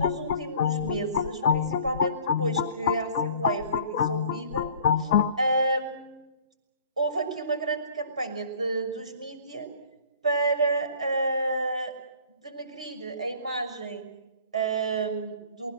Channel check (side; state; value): both; inverted; correlation -0.50